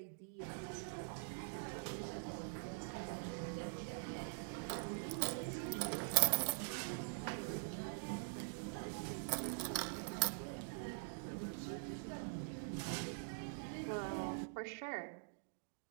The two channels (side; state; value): left; silent; digital silence